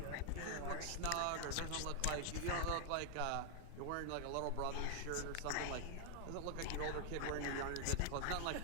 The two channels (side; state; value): both; different; correlation 0.00